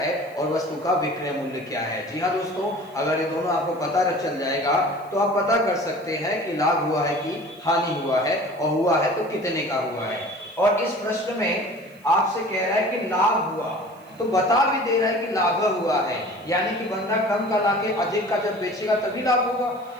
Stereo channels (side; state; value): right; noise; hiss, 29 dB below the sound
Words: और वस्तु का विक्रय मूल्य क्या है। जी हाँ दोस्तों, अगर ये दोनों आपको पता चल जाएगा तो आप पता कर सकते हैं कि लाभ हुआ है कि हानि हुआ है, और हुआ है तो कितने का हुआ है। और इस प्रश्न में आपसे कह रहा है कि लाभ हुआ, तो बता भी दे रहा है कि लाभ हुआ है, यानी कि बंदा कम का लाके अधिक का जब बेचेगा तभी लाभ होगा।